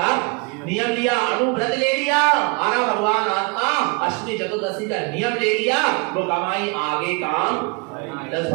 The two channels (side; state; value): left; quieter; 30.9 dB